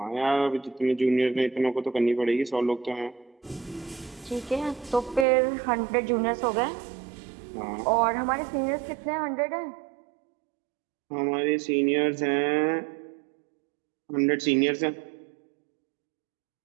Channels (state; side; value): drops out; left; at 5.2 s